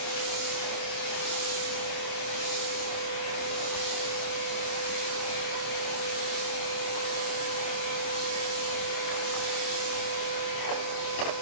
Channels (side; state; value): right; late; 27 ms